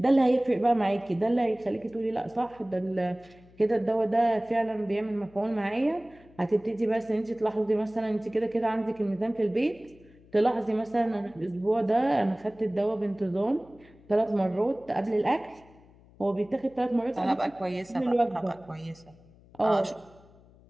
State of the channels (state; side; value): noise; left; hum, 26 dB below the sound